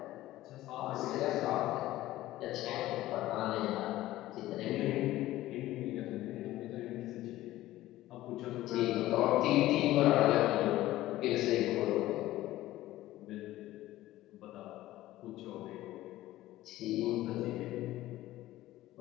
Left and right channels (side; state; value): right; quieter; 15.7 dB